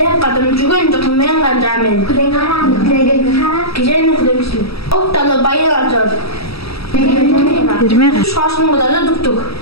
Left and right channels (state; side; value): late; right; 0.77 ms